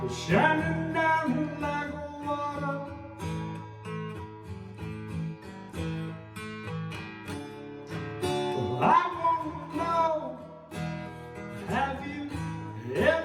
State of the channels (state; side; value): identical; both; correlation 1.00